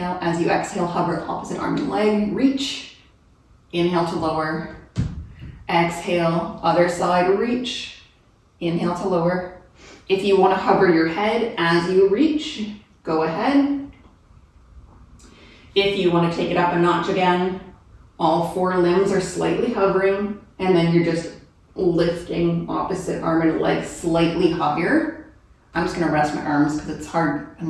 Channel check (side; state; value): both; identical; correlation 1.00